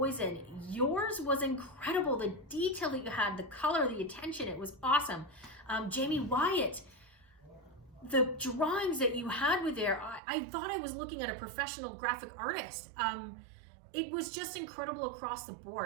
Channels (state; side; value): drops out; left; at 10.2 s